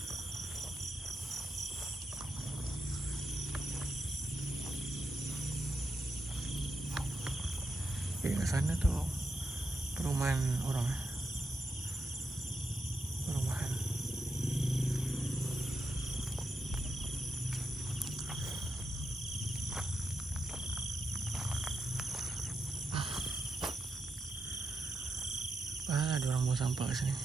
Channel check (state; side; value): normal; both; correlation 0.85